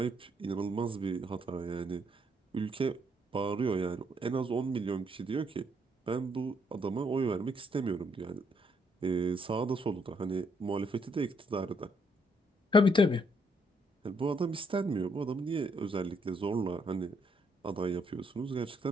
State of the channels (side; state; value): both; normal; correlation 0.72